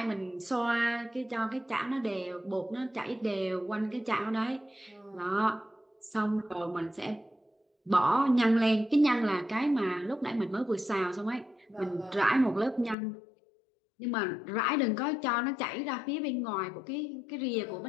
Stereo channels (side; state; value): right; drops out; at 13.0 s